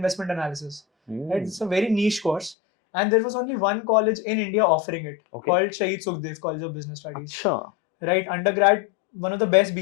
Analysis. Right? It's a very niche course. And there was only one college in India offering it, called Shahid Sukhdev College of Business Studies. अच्छा. Right, undergrad, one of the best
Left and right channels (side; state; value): right; drops out; at 2.6 s